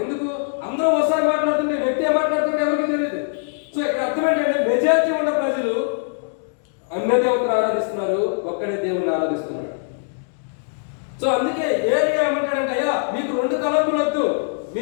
ఎందుకు? అందరూ ఒకసారి మాట్లాడుతుంటే వ్యక్తి ఏం మాట్లాడుతుంటే ఎవరికి తెలియదు. సో ఇక్కడ అర్థం ఏంటంటే మెజారిటీ ఉన్న ప్రజలు అన్య దేవతను ఆరాధిస్తున్నారు, ఒక్కడే దేవుని ఆరాధిస్తున్నారు. సో అందుకే ఏలియా ఏమంటాడంటే, అయ్యా మీకు 2 తలంపులు వద్దు,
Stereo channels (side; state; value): right; silent; digital silence